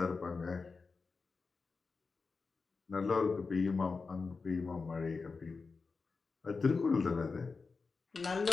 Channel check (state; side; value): quieter; right; 4.5 dB